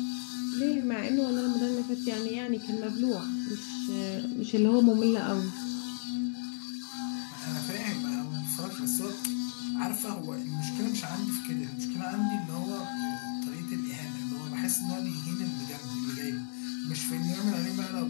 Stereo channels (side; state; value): right; silent; 56 dB below the other